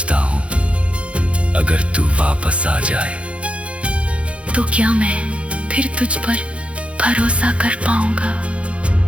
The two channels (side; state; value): left; late; 0.061 ms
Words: हूँ अगर तू वापस आ जाए तो क्या मैं फिर तुझ पर भरोसा कर पाऊंगा?